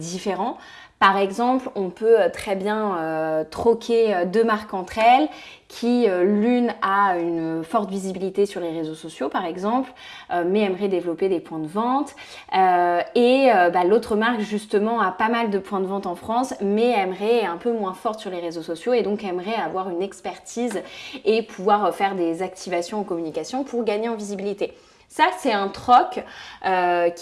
Par exemple, on peut très bien troquer deux marques entre elles qui l'une a une forte visibilité sur les réseaux sociaux par exemple, mais aimerait développer des points de vente et l'autre marque justement a pas mal de points de vente en France mais aimerait un peu moins forte sur les réseaux sociaux et donc aimerait avoir une expertise et pouvoir faire des activations en communication pour gagner en visibilité. Ça, c'est un troc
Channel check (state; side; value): identical; both; correlation 1.00